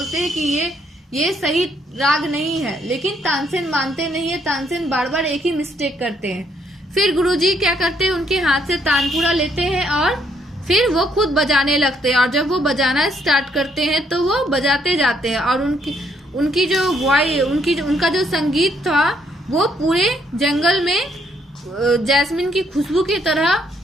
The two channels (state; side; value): normal; both; correlation 0.70